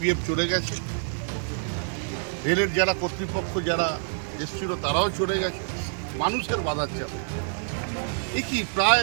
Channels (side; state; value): left; silent; 60 dB below the other